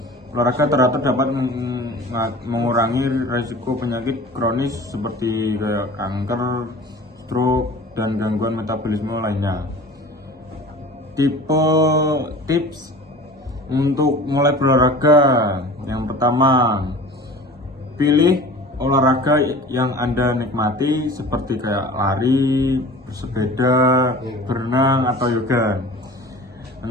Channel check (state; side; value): normal; both; correlation 0.40